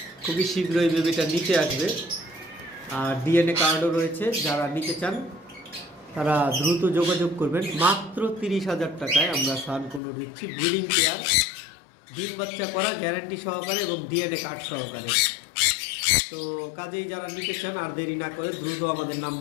খুবই শীঘ্রই বেবিটা নিতে আসবে। আর ডিএনএ কার্ডও রয়েছে, যারা নিতে চান তারা দ্রুত যোগাযোগ করবেন। মাত্র 30,000 টাকায় আমরা সান কোনর দিচ্ছি, ব্রিডিং পেয়ার, ডিম বাচ্চা করা গ্যারান্টি সহকারে এবং ডিএনএ কার্ড সহকারে। তো কাজেই যারা নিতে চান আর দেরি না করে দ্রুত আমাদের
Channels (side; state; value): right; drops out; at 10.0 s